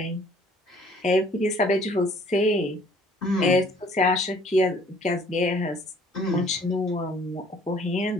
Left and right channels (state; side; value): normal; both; correlation 0.57